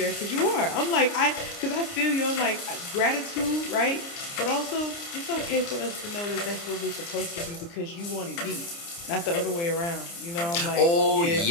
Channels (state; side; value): late; right; 29 ms